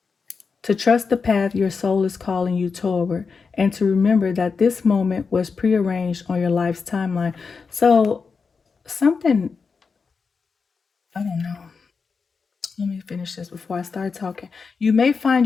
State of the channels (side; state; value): right; quieter; 5.1 dB